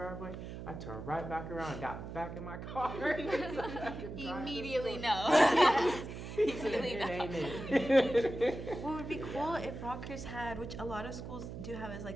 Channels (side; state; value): right; noise; hum, 9 dB below the sound